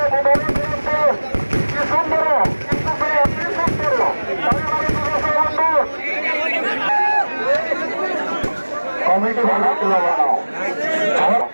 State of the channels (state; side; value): inverted; both; correlation -1.00